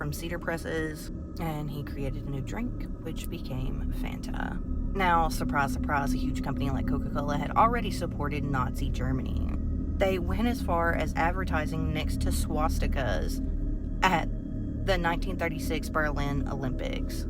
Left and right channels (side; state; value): both; identical; correlation 1.00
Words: cedar presses, and he created a new drink, which became Fanta. Now, surprise, surprise, a huge company like Coca-Cola had already supported Nazi Germany. They went as far as advertising next to swastikas at the 1936 Berlin Olympics.